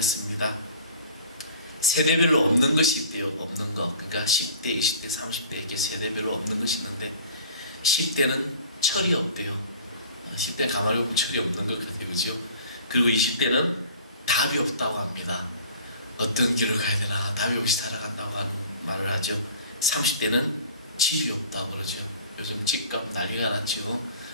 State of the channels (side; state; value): both; inverted; correlation -0.45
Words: 세대별로 없는 것이 있대요. 없는 거. 그러니까 10대, 20대, 30대 이렇게 세대별로 없는 것이 있는데 10대는 철이 없대요. 10대 가만히 보면 철이 없는 것 같아요. 그죠? 그리고 20대는 답이 없다고 합니다. 어떤 길을 가야 되나 답이 없이 살아간다고 하는 말을 하죠. 30대는 집이 없다고 그러죠. 요즘 집값 난리가 났죠.